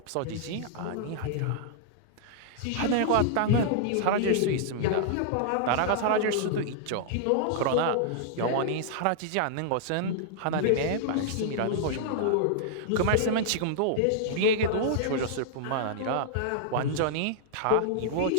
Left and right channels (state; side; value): different; both; correlation -0.01